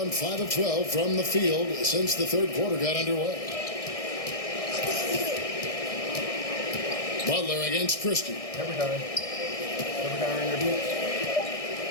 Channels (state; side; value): late; right; 1.6 ms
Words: 5 of 12 from the field since the third quarter got underway. Butler against Christie. Every time. Every time in your boots.